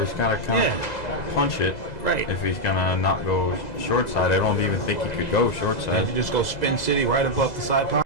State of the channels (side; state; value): right; late; 2.0 ms